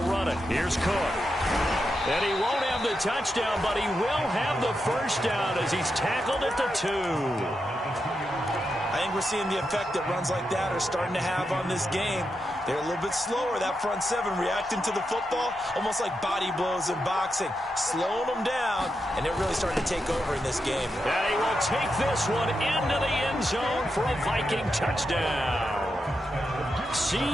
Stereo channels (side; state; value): both; normal; correlation 0.86